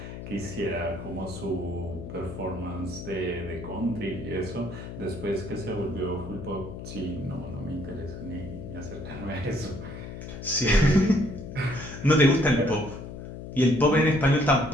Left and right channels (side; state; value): left; noise; hum, 10 dB below the sound